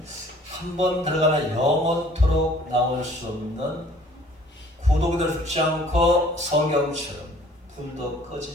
한 번 들어가면 영원토록 나올 수 없는 구독이 죽지 않고 성경처럼 불도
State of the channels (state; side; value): normal; both; correlation 0.54